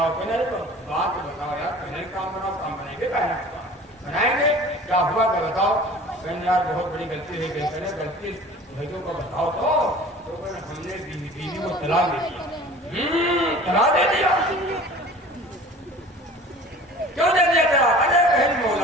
کہنے تو بات بتاؤ یار پہلے کام بناؤ. کام بنائیں گے بنائیں گے کیا ہوا کہ بتاؤ. کہنے یار بہت بڑی غلطی ہے. کہتے ہیں غلطی بھائیوں کو بتاؤ تو ہم نے بیوی کو طلاق دے دیا. طلاق دے دیا. کیوں دے دیا طلاق؟ ارے بہن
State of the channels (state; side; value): normal; both; correlation 0.43